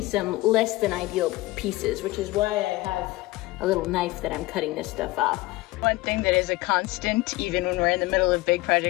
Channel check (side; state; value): right; quieter; 20.0 dB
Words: some less than ideal pieces, which is why I have a little knife that I'm cutting this stuff off. One thing that is a constant, even when we're in the middle of big